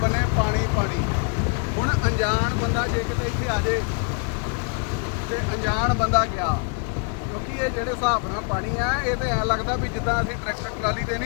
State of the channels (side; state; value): right; quieter; 37.8 dB